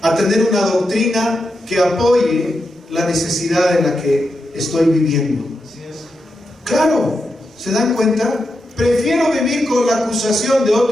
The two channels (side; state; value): both; normal; correlation 0.86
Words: a tener una doctrina que apoye la necesidad en la que estoy viviendo. Claro, ¿se dan cuenta? Prefiero vivir con la acusación de